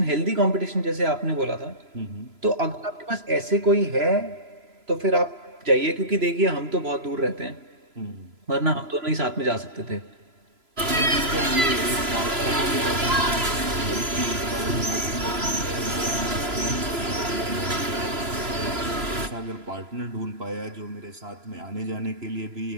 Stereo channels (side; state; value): left; late; 3.0 ms